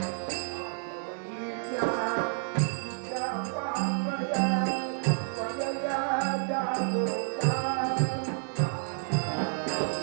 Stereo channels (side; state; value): left; silent; 58 dB below the other